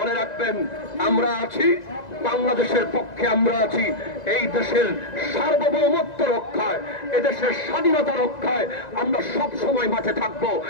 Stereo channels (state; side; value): late; right; 1.9 ms